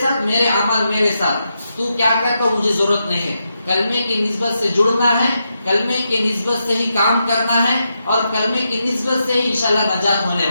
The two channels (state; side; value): inverted; both; correlation -0.85